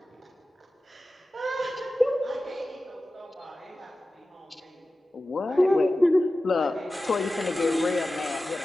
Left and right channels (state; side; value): normal; both; correlation 0.95